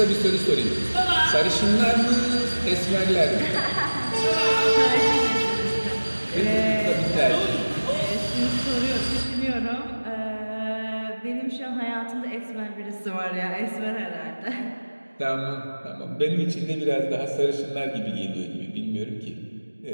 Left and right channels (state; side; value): inverted; both; correlation -1.00